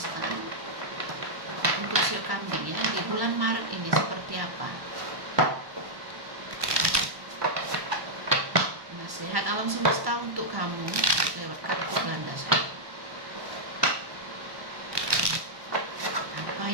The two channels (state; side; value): late; left; 1.1 ms